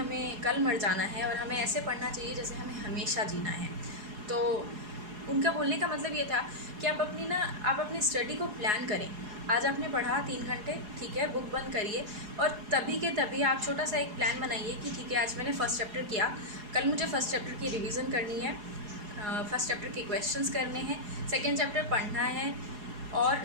कल मर जाना है, और हमें ऐसे पढ़ना चाहिए जैसे हमें हमेशा जीना है। तो उनका बोलने का मतलब ये था कि आप अपनी स्टडी को प्लान करें। आज आपने पढ़ा 3 घंटे, ठीक है, बुक बंद करिए, और तभी के तभी आप छोटा सा एक प्लान बनाइए कि ठीक है आज मैंने फ़र्स्ट चैप्टर किया, कल मुझे फ़र्स्ट चैप्टर की रिवीजन करनी है, फ़र्स्ट चैप्टर के क्वेश्चंस करने हैं, सेकेंड चैप्टर पढ़ना है और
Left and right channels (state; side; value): late; left; 4.8 ms